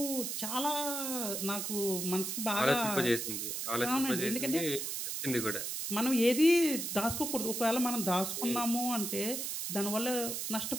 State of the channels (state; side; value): noise; right; hiss, 3 dB below the sound